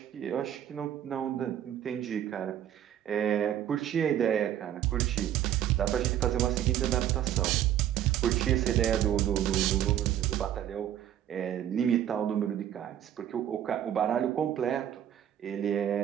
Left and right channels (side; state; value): left; quieter; 10.9 dB